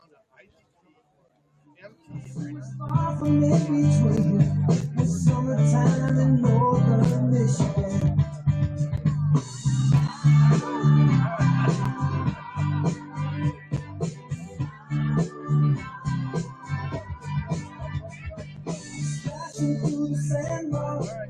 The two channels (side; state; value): both; identical; correlation 1.00